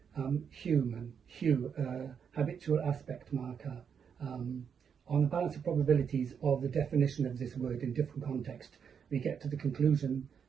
Human, hue, habitual aspect marker. On the balance of probabilities of the definition of this word in different contexts, we get to the conclusion,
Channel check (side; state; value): left; quieter; 7.1 dB